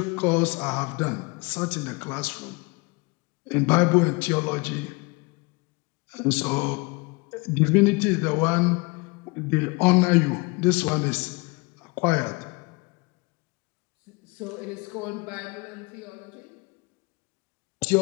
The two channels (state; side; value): quieter; right; 27.3 dB